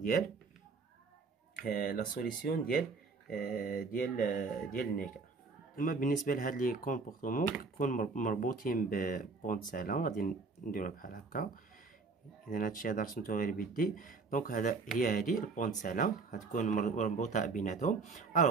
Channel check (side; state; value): left; quieter; 4.3 dB